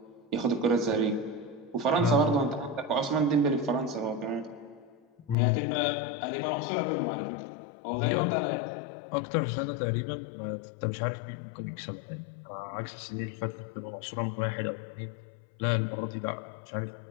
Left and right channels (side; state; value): right; drops out; at 5.4 s